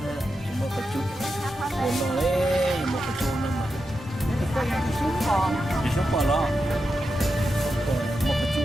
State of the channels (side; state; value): both; normal; correlation 0.88